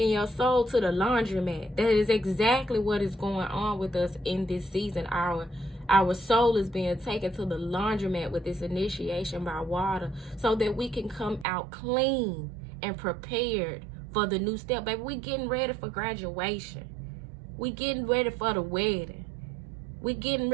your soul to the laundromat. That is exactly what is going on with us in this season. Our soul is being taken to the laundromat with this initiation by water, so that we can come out clean and prepared for the new step. Baby, we getting ready for graduation. We getting ready for the wedding. We getting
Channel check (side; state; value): left; drops out; at 11.5 s